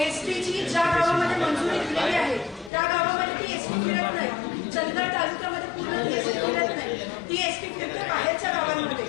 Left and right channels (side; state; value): right; drops out; at 2.7 s